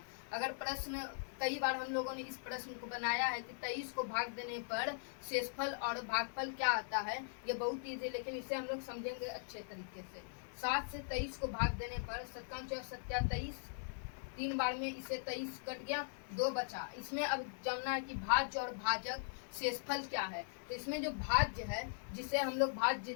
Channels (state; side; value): silent; right; digital silence